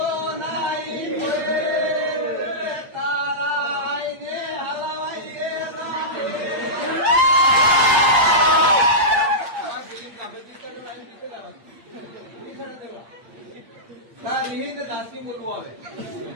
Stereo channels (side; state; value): left; late; 8.6 ms